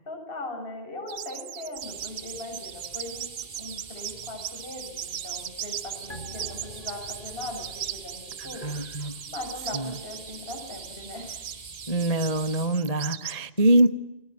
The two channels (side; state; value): right; late; 2.1 ms